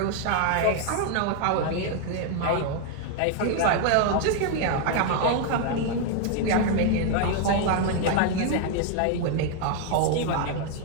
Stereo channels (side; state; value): both; different; correlation 0.00